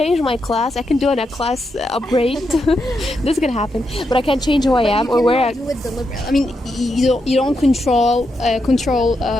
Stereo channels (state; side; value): normal; both; correlation 0.83